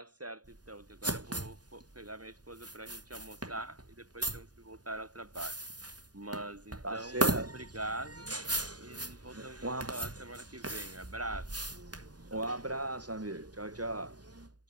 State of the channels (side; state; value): left; late; 0.69 ms